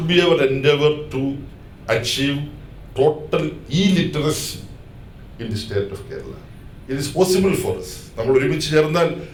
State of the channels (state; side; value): identical; both; correlation 1.00